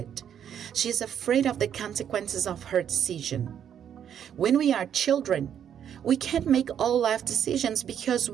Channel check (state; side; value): quieter; left; 9.1 dB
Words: She is afraid of the consequences of her decision. When we are children, we can't make all life decisions because